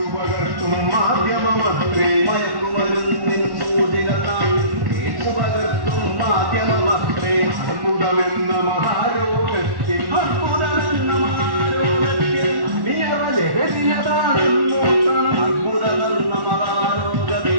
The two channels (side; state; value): left; late; 1.1 ms